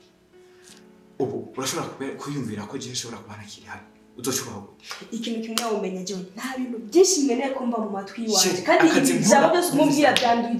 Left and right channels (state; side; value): identical; both; correlation 1.00